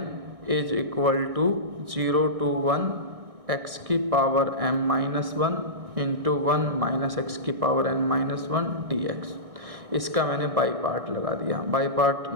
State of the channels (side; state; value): left; late; 1.6 ms